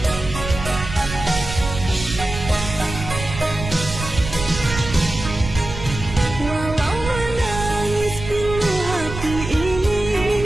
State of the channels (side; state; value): right; noise; rumble, 8 dB below the sound